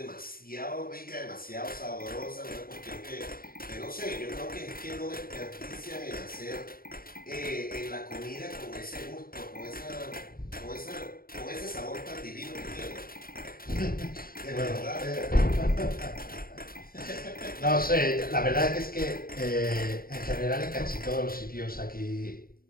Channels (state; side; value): late; right; 0.43 ms